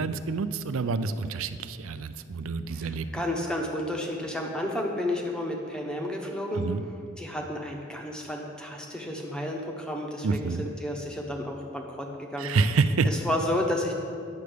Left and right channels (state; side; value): normal; both; correlation 0.60